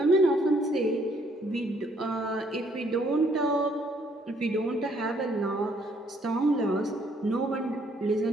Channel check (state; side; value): normal; both; correlation 0.66